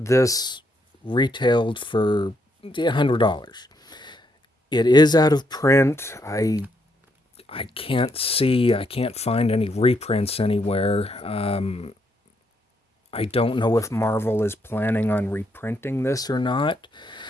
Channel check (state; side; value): normal; both; correlation 0.76